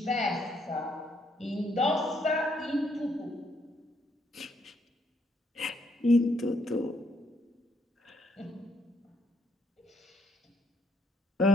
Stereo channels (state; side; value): normal; both; correlation 0.71